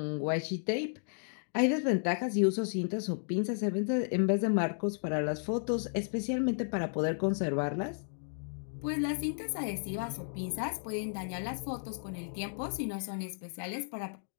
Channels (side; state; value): right; silent; digital silence